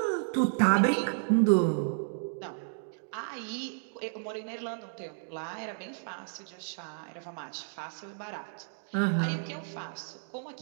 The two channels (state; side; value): silent; left; digital silence